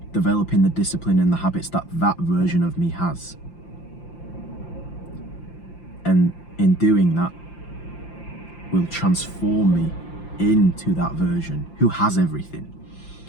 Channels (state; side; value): late; right; 5.8 ms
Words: Developing the discipline and the habits that version of me has. And in doing that, will transform me into that version who has everything.